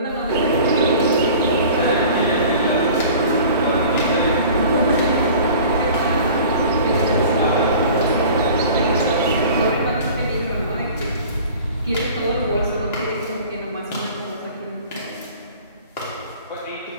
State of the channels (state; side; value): inverted; both; correlation -0.44